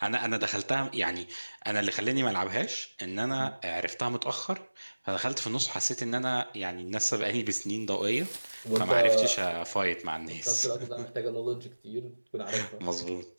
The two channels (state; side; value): inverted; both; correlation -1.00